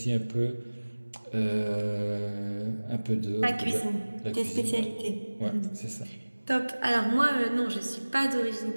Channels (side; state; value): both; inverted; correlation -1.00